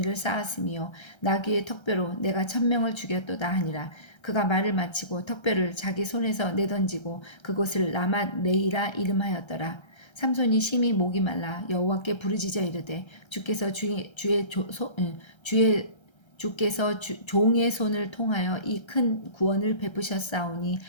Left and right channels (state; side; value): late; right; 1.3 ms